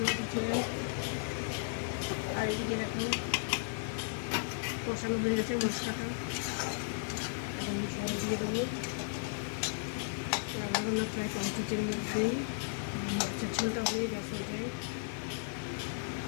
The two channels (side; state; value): right; silent; digital silence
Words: উঠেছে, আর এদিকে দেখো কষানো হয়ে গেছে মশলাটা। ঝোল দিয়ে দেবো। রান্না হলো প্রায় কমপ্লিটের মধ্যেই, মাছের ঝোলটা হয়ে গেছে।